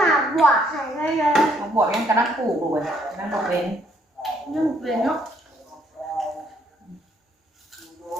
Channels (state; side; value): normal; both; correlation 0.68